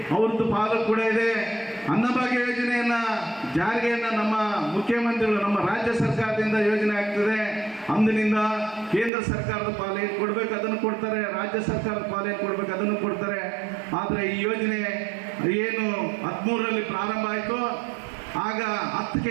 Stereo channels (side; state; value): left; drops out; at 9.1 s